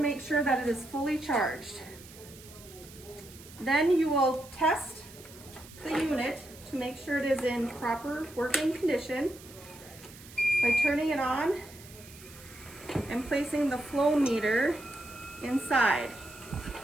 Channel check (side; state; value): right; noise; hiss, 19 dB below the sound